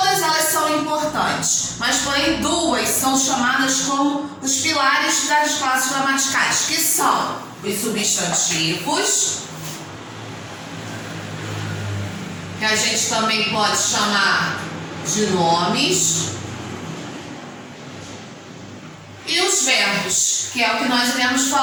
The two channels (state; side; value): identical; both; correlation 1.00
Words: elas são importantes, mas porém duas são chamadas como os pilares das classes gramaticais, que são os substantivos, que a gente também pode chamar de nomes, e os verbos, que é o que nós iremos